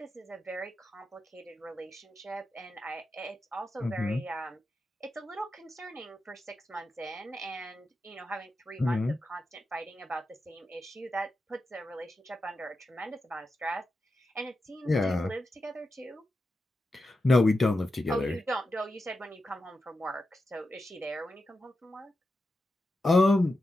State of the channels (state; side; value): normal; both; correlation 0.89